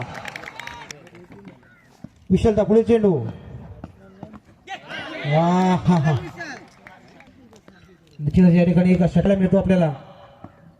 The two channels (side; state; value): both; identical; correlation 1.00